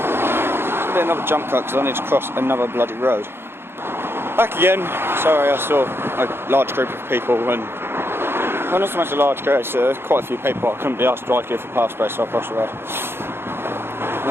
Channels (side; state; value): left; late; 0.11 ms